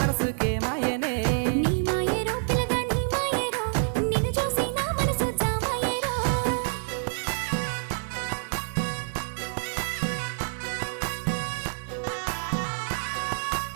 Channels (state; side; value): silent; left; digital silence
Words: మనసుకే మాయనే నీ మాయేరో పిల్లగా నీ మాయేరో నిన్ను చూసి నా మనసు జామాయేరో